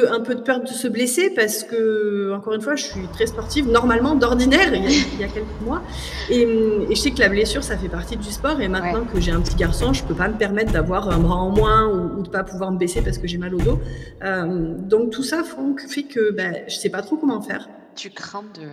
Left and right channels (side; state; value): both; identical; correlation 1.00